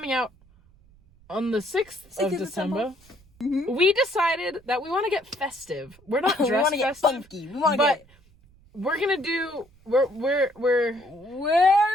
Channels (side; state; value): right; noise; rumble, 29 dB below the sound